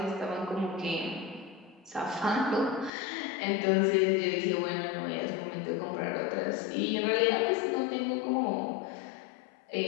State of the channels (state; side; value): drops out; right; at 2.9 s